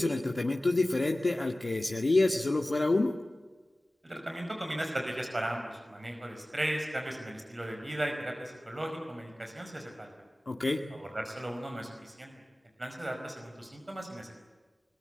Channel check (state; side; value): normal; both; correlation 0.97